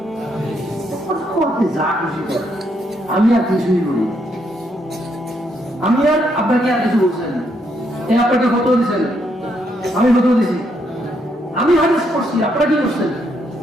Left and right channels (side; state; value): both; normal; correlation 0.75